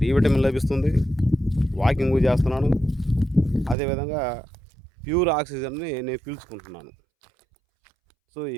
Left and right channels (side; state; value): left; drops out; at 3.8 s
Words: డి విటమిన్ లభిస్తుంది, వాకింగ్ చేస్తున్నాను, అదేవిధంగా ప్యూర్ ఆక్సిజన్ని నేను పీల్చుకుంటున్నాను. సో ఈ